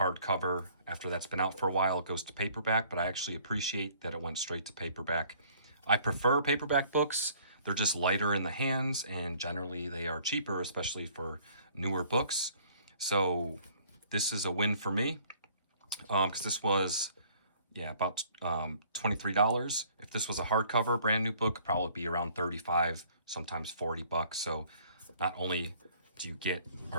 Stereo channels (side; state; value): both; inverted; correlation -0.57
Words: After that's been out for a while, it goes to paperback, but I actually appreciate that it went straight to paperback. I prefer paperback books. They're just lighter in the hands, and generally they are cheaper, especially for newer books. So this is a win for me, because this was, about $23. If this was a hardcover, brand new book, probably be around $35, sometimes $40. So not only do you get,